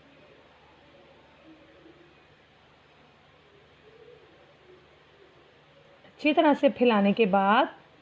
अच्छी तरह से फैलाने के बाद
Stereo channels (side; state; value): both; identical; correlation 1.00